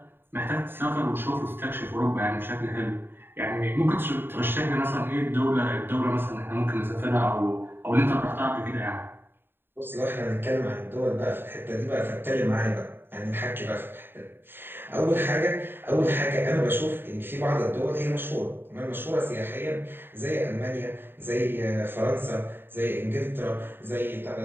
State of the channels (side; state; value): left; late; 0.10 ms